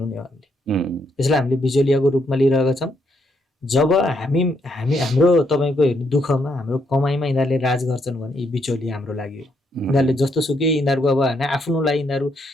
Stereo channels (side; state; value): both; normal; correlation 0.75